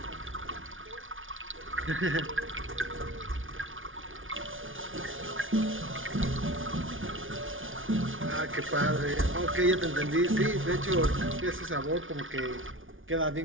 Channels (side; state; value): left; late; 0.57 ms